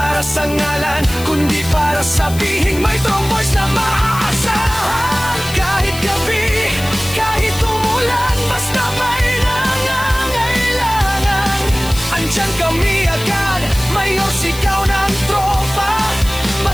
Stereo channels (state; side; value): noise; left; hiss, 13 dB below the sound